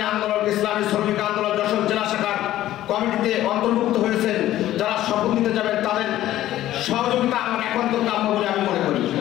আন্দোলন, ইসলামী শ্রমিক আন্দোলন যশোর জেলা শাখার কমিটিতে অন্তর্ভুক্ত হয়েছেন, যারা শপথ নিতে যাবেন, তাদের সহযোগিতা আমার একান্ত কাম্য বলে আমি মনে করি।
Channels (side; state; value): right; quieter; 13.8 dB